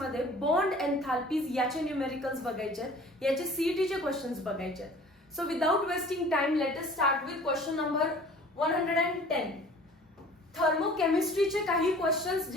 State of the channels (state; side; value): normal; both; correlation 0.47